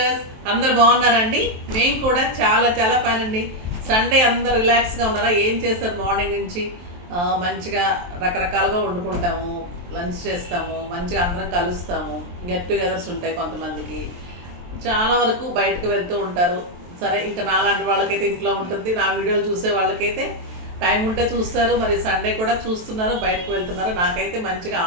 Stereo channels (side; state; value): left; late; 23 ms